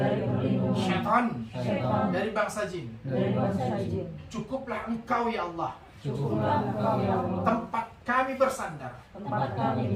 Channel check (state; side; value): identical; both; correlation 1.00